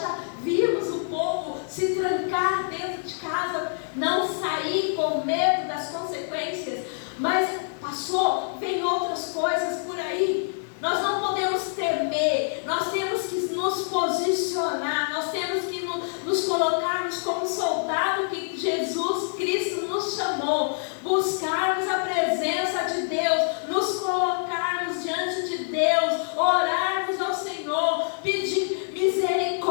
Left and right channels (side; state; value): right; silent; 61 dB below the other